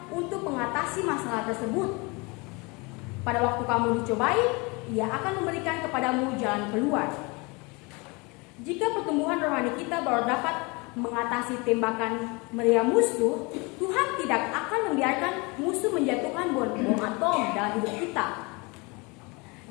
untuk mengatasi masalah tersebut. Pada waktu kamu dicobai, Ia akan memberikan kepadamu jalan keluar. Jika pertumbuhan rohani kita baru dapat mengatasi tembakan meriam musuh, Tuhan tidak akan membiarkan musuh menjatuhkan bom atom dalam hidup kita.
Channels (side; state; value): right; quieter; 27.6 dB